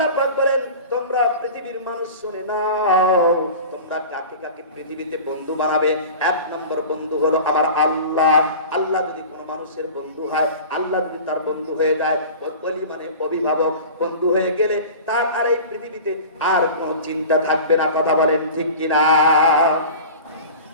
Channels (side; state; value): both; inverted; correlation -0.37